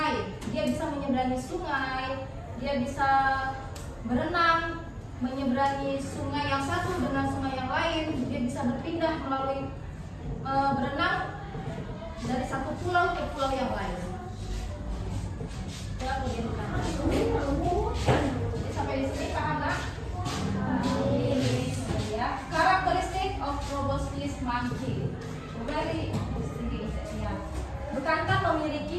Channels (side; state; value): both; identical; correlation 1.00